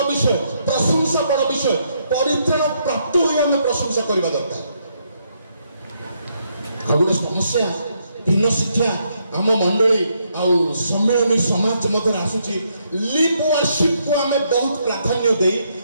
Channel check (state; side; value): inverted; both; correlation -0.75